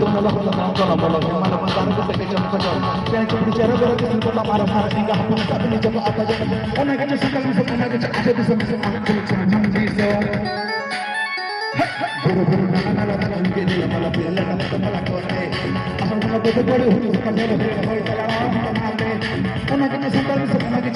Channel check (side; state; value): both; identical; correlation 1.00